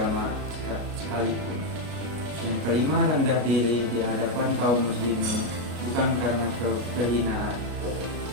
sekalipun. Yang kelima, rendah diri di hadapan kaum muslimin bukan karena kehinaan.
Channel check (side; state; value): left; late; 33 ms